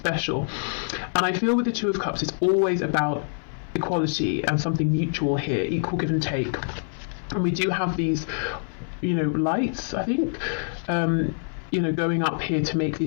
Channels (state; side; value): silent; right; 57 dB below the other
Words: and I feel with the Two of Cups it's always about equality and something mutual here, equal give and take, and we do have these lights, I think, going up here to make